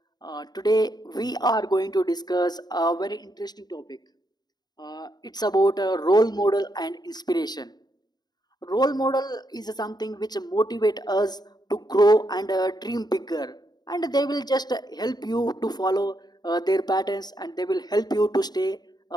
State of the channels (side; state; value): right; late; 0.20 ms